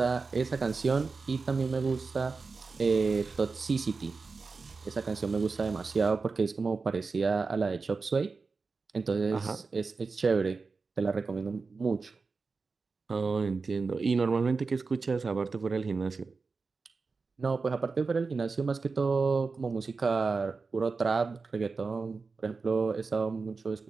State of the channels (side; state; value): left; quieter; 4.4 dB